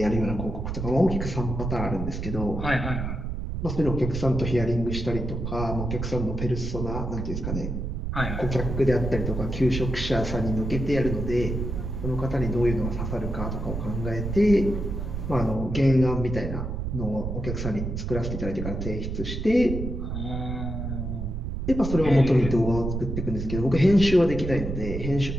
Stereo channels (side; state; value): right; noise; rumble, 4 dB below the sound